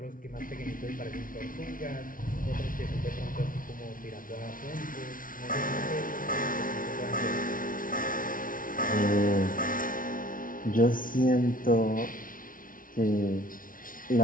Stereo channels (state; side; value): late; right; 0.39 ms